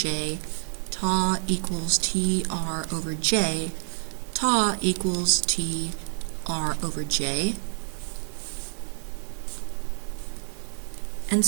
tau equals TR over J, tau equals TR over J. And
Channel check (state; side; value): silent; left; 60 dB below the other